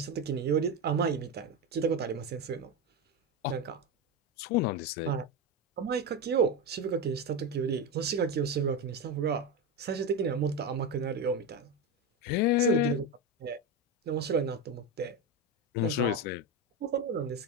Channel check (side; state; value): both; normal; correlation 0.15